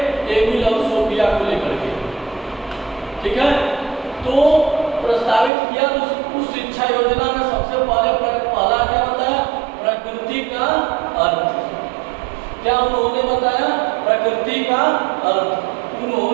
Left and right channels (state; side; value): drops out; left; at 5.5 s